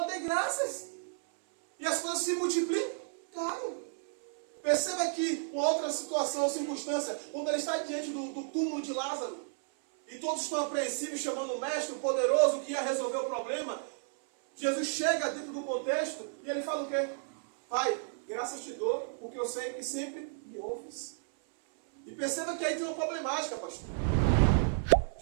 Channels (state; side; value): silent; left; 56 dB below the other